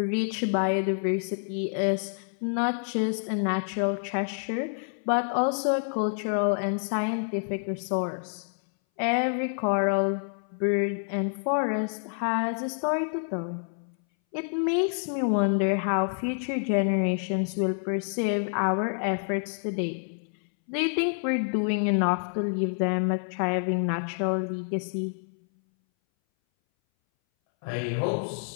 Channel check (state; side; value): silent; right; 59 dB below the other